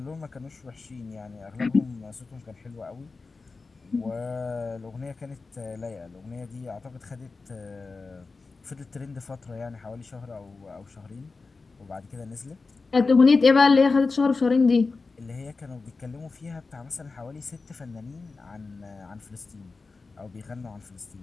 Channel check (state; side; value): quieter; right; 4.1 dB